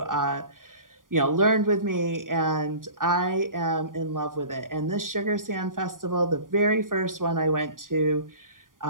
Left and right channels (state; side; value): late; left; 0.90 ms